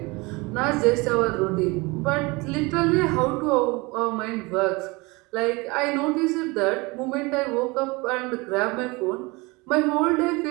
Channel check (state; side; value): quieter; left; 25.2 dB